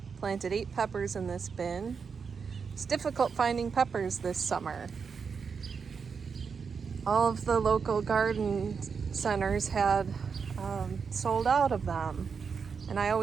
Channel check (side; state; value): left; quieter; 5.8 dB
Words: Planted 8 peppers in this bin. It's difficult finding peppers this summer. All of the local garden centers had sold out of them, and I